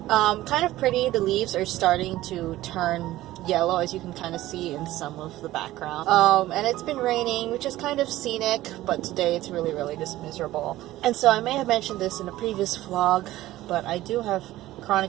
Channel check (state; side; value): quieter; left; 15.8 dB